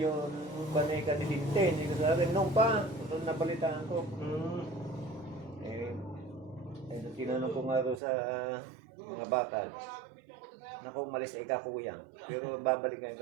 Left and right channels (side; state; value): left; drops out; at 8.0 s